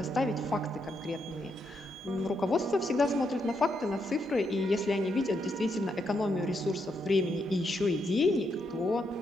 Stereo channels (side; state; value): both; normal; correlation 0.79